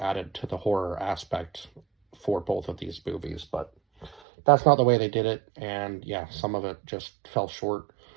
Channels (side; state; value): left; drops out; at 4.2 s